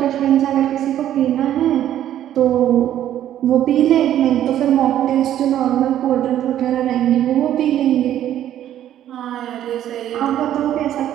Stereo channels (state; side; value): quieter; left; 11.6 dB